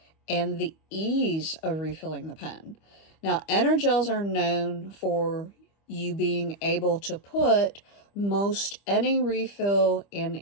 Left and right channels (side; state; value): right; late; 25 ms